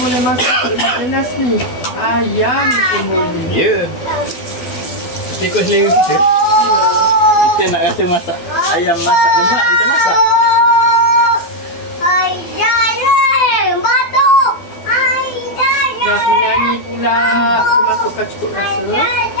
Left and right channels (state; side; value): late; right; 12 ms